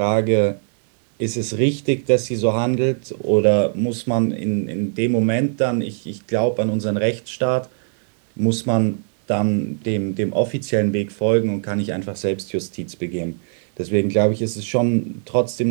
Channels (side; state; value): left; silent; 65 dB below the other